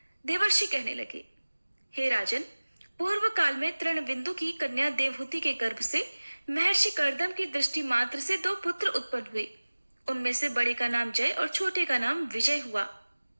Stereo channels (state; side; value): inverted; both; correlation -1.00